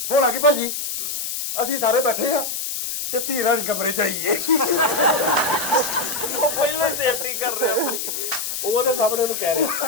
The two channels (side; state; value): left; noise; hiss, 4 dB below the sound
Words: ਹੁਣ ਆ ਗਈ ਭਾਜੀ, ਅਸੀਂ ਸਾਰੇ ਬੈਠੇ ਆ ਤੇ ਧੀ ਰਾਣੀ ਕਮਰੇ ਚ ਆਈਏ। ਉਹ ਪਹਿਲਾਂ ਹੀ ਸੇਫਟੀ ਕਰ ਰਿਹਾ ਆਪਣੀ। ਉਹਦੇ ਸਾਹਮਣੇ ਉਹਨੂੰ ਕਹਿ